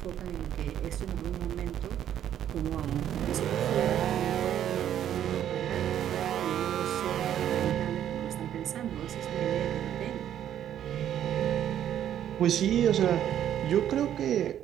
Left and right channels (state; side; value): quieter; left; 10.6 dB